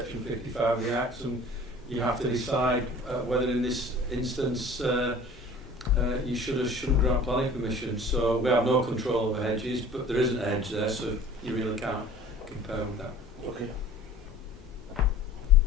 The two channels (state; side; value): normal; both; correlation 0.46